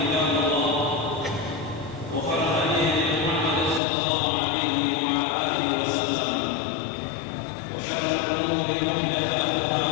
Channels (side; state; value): right; drops out; at 3.8 s